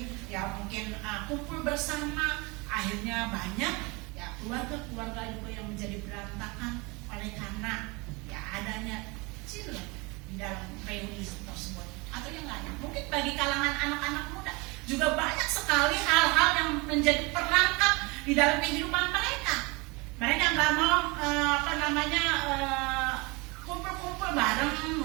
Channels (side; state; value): left; quieter; 26.7 dB